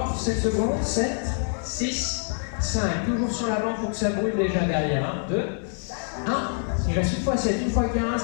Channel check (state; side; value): silent; right; 61 dB below the other